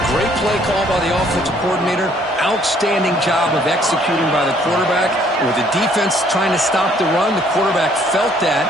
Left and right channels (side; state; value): both; normal; correlation 0.63